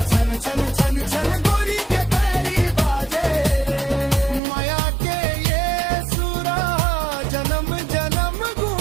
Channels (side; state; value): left; drops out; at 4.4 s